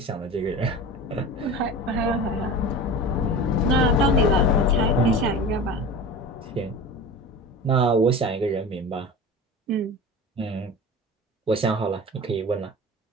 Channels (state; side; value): normal; both; correlation 0.33